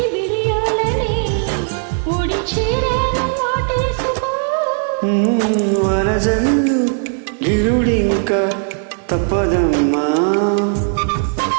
బిడియాలని ఒడి చీరను వాటేసుకో. వరజల్లు గిలుడింకా తప్పదమ్మా,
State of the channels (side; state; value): left; silent; 59 dB below the other